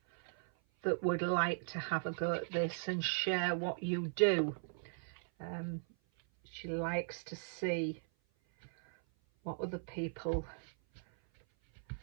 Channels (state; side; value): silent; left; 53 dB below the other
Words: that would like to have a go at this and share what you do. She likes to see what other people